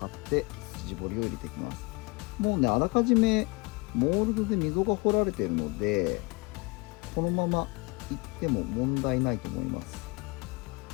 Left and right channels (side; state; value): right; quieter; 27.2 dB